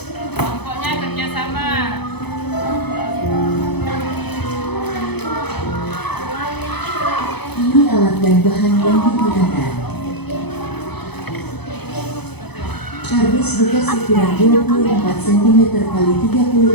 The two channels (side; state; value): right; late; 0.98 ms